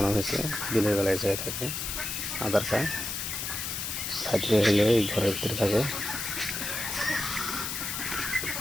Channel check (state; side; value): noise; left; hiss, 3 dB below the sound